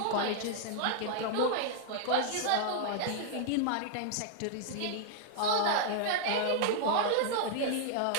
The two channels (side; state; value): both; different; correlation 0.00